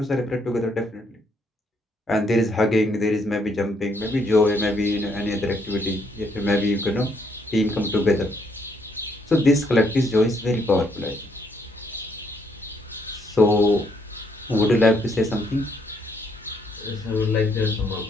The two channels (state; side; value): normal; both; correlation 0.71